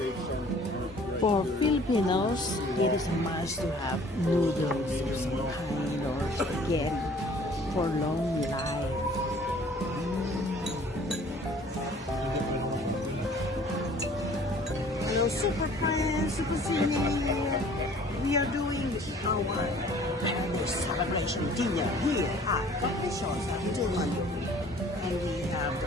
For Filipinos, it is a must to have noodles of some kind or spaghetti for long life. Hello, Super Friends, Super Senior. We are doing our celebration dinner here at Coffee Shop sa Mango. And we have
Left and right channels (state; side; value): normal; both; correlation 0.52